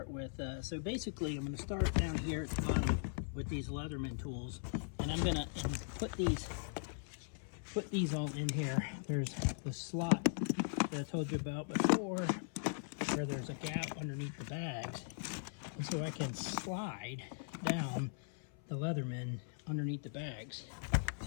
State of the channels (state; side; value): silent; right; 52 dB below the other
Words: with. So basically, I'm going to start down here at the bottom with these Leatherman tools. And I'm going to put these all in here. There's the slot that I told you about before, where there's a gap underneath the bags. And so I can slide down the Leatherman underneath the bags.